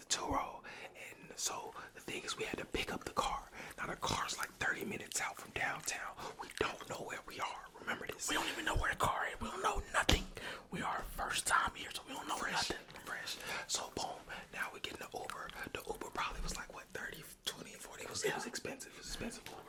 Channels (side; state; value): both; identical; correlation 1.00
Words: Turo, and so the thing is we had to pick up the car. Now the car's like 30 minutes out from downtown. We don't know where we are, remember this. we don't even know where the car is. We don't know nothing. We are first time here, so we don't know nothing. Fresh. So boom, now we get in the Uber. The Uber probably was like what, 30, 20, 40. It was expensive. It was expensive